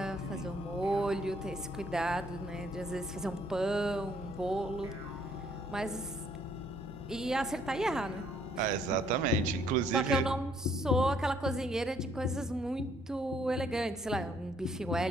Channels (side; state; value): both; normal; correlation 0.66